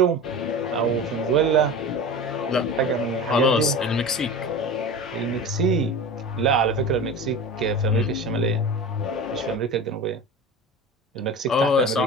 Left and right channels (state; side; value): normal; both; correlation 0.31